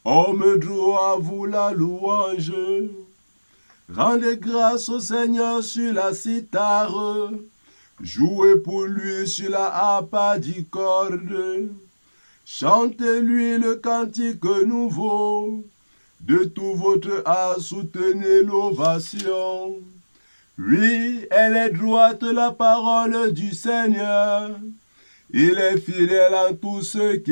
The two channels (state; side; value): inverted; both; correlation -1.00